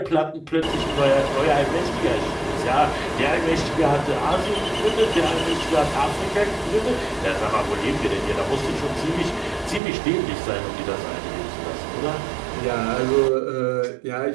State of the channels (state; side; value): drops out; left; at 9.8 s